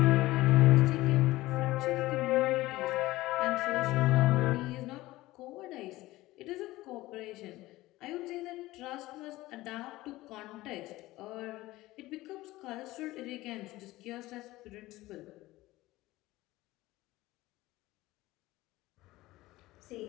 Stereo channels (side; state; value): right; quieter; 18.1 dB